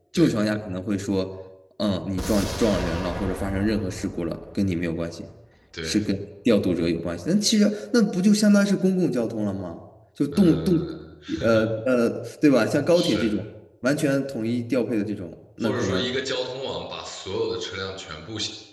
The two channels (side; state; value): both; identical; correlation 1.00